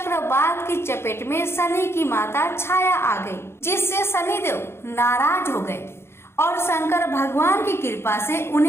की चपेट में शनि की माता छाया आ गई, जिससे शनिदेव नाराज हो गए और शंकर भगवान की कृपा से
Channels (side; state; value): right; late; 0.12 ms